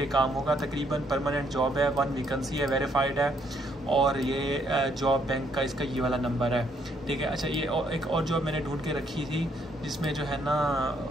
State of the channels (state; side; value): normal; both; correlation 0.71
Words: काम होगा तकरीबन, परमानेंट जॉब है, 1 वैकेंसी है, वेरीफाइड है, और ये जॉब बैंक का इसका ये वाला नंबर है, ठीक है। अच्छा, ये एक और जॉब मैंने ढूंढ के रखी थी जिसमें जो है